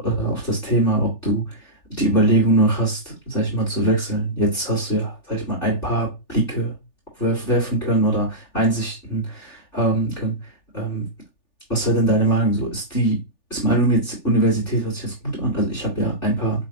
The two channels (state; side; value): late; right; 3.4 ms